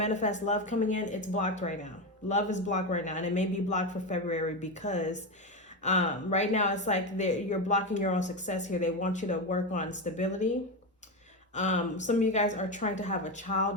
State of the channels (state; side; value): normal; both; correlation 0.15